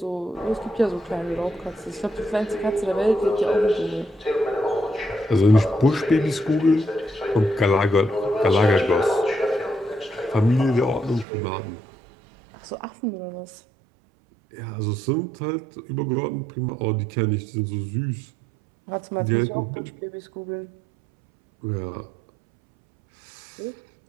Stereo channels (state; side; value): drops out; left; at 11.2 s